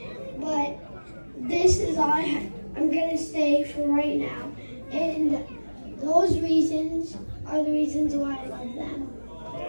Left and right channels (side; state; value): both; inverted; correlation -1.00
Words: but this is all I'm gonna say for right now. And those reasons are the reasons why I love them.